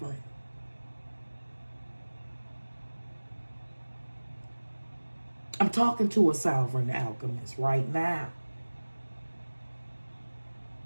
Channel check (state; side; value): inverted; both; correlation -1.00